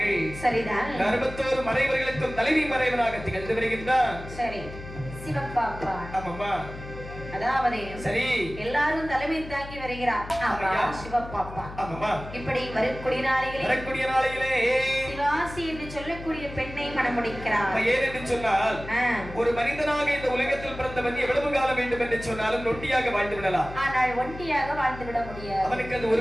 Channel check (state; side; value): noise; left; hum, 13 dB below the sound